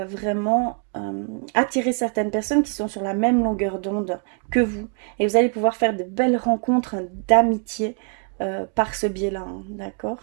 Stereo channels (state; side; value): quieter; left; 39.2 dB